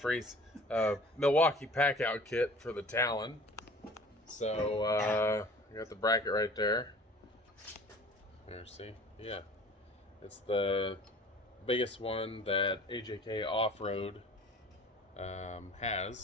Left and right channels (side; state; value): both; normal; correlation 0.46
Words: Milwaukee Packout kit for the Talon. So I got the bracket right there. There, see? Yeah, it's the biggest one that AJK Offroad